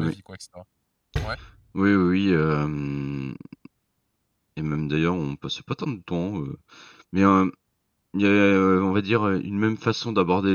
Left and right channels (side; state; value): both; identical; correlation 1.00